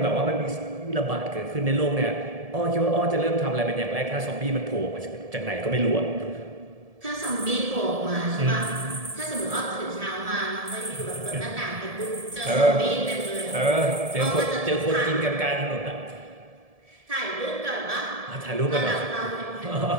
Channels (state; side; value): late; left; 1.7 ms